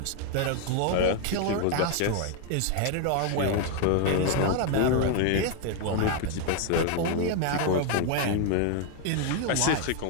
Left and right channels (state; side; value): different; both; correlation 0.00